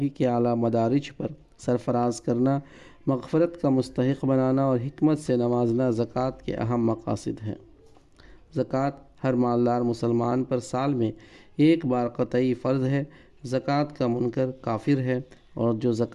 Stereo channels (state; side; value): identical; both; correlation 1.00